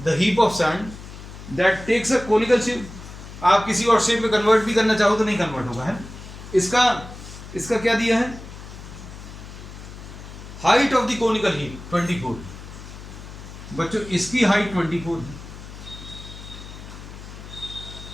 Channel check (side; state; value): left; noise; hum, 14 dB below the sound